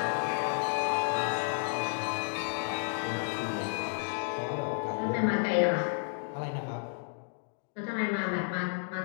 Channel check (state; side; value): silent; right; 57 dB below the other